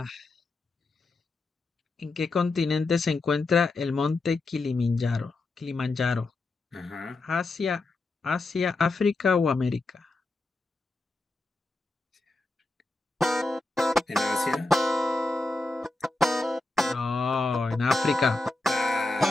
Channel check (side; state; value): right; quieter; 3.1 dB